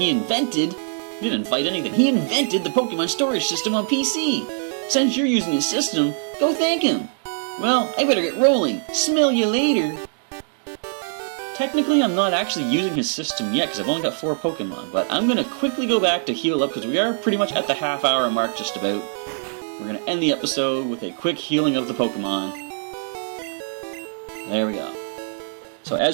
the Pokemon storage system on PC. Since you're using his system, go thank him. Well, I better get rolling. Smell you later. Technically, I'm not actually using his system yet because I've only got 4 Pokemon, but I'm going to quickly go back to heal up because we are pretty much at the half-hour mark just about. We're going to end the episode with a quick healing of the Pokemon. There we go. So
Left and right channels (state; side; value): silent; left; digital silence